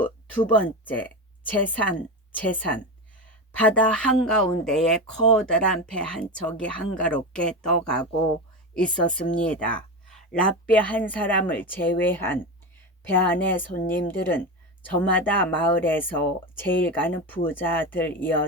두 번째. 재산. 바다 한가운데에 커다란 배 한 척이 한가롭게 떠가고 있었습니다. 랍비 한 사람을 제외한 배 안의 손님들은 저마다 마을에서 제일 가는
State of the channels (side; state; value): both; normal; correlation 0.20